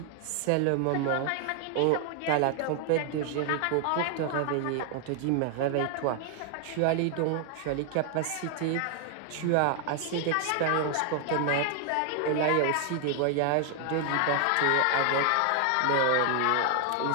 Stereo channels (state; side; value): different; both; correlation 0.00